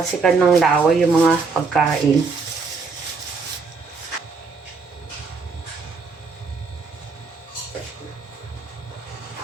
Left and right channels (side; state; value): left; quieter; 4.5 dB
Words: ng laway yung mga pagkain.